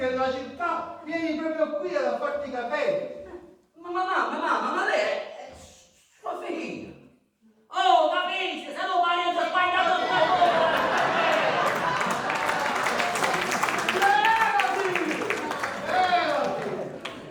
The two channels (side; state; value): both; identical; correlation 1.00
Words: della città, vieni proprio qui ad farti i capelli. Ma lei è sua figlia. Oh, capisci, se non parli ho sbagliato